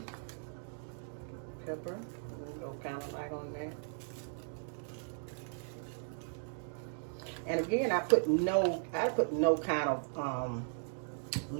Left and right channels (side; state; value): left; silent; digital silence